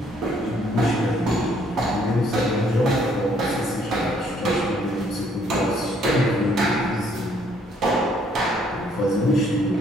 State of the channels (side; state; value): both; normal; correlation 0.65